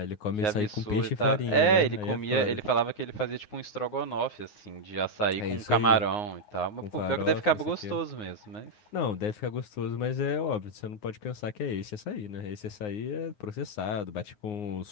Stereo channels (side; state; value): right; late; 9.6 ms